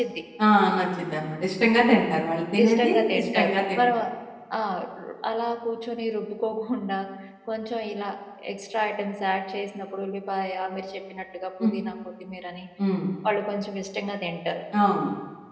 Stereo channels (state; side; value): identical; both; correlation 1.00